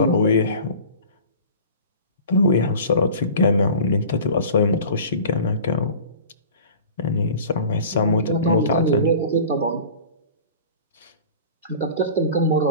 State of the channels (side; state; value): both; inverted; correlation -0.40